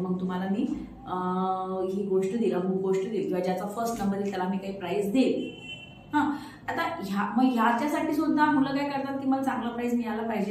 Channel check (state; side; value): identical; both; correlation 1.00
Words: मग तुम्हाला मी ही गोष्ट देईल, अमुक गोष्ट देईल, किंवा ज्याचा फर्स्ट नंबर येईल त्याला मी काही प्राइज देईल. आता ह्याच्यासाठी सुद्धा मुलं काय करतात की मला चांगला प्राइज मिळाला